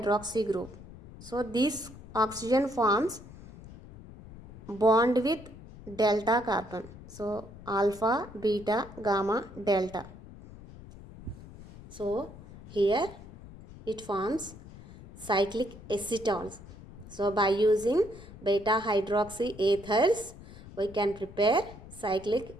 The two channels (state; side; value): noise; left; rumble, 17 dB below the sound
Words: group. So this oxygen forms bond with delta carbon. So alpha, beta, gamma, delta. So here it forms cyclic acetals. So by using beta hydroxy ethers, we can prepare cyclic